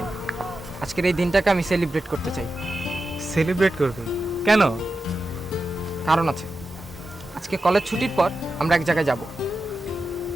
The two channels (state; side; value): normal; both; correlation 0.91